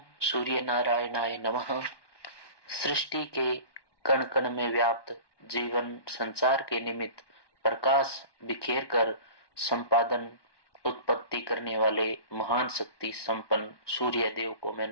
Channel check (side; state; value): right; late; 1.1 ms